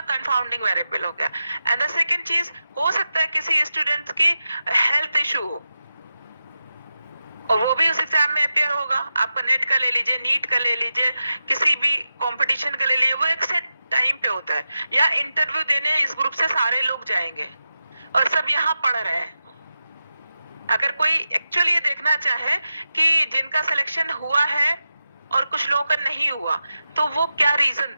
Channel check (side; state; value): both; inverted; correlation -0.91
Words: कंफाउंडिंग वेरिएबल हो गया। एंड द सेकंड चीज, हो सकता है किसी स्टूडेंट्स की हेल्थ इशू हो और वो भी उस एग्जाम में अपियर होगा। आपका नेट का ले लीजिए, नीट का ले लीजिए, किसी भी कंपटीशन का ले लीजिए, वो एक सेट टाइम पे होता है। या इंटरव्यू देने इस ग्रुप से सारे लोग जाएंगे और सब यहाँ पढ़ रहे हैं। अगर कोई एक्चुअली ये देखना चाहे कि जिनका सिलेक्शन हुआ है और कुछ लोगों का नहीं हुआ, तो वो क्या रीजन